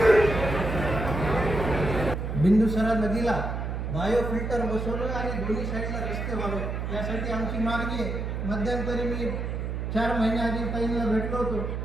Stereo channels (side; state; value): right; noise; hum, 3 dB below the sound